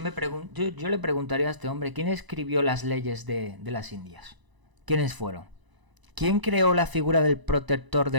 le preguntaría a este hombre, ¿quién escribió las leyes de las Indias? ¿Quiénes fueron? ¿Quién creó la figura del protector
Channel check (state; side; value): late; left; 1.0 ms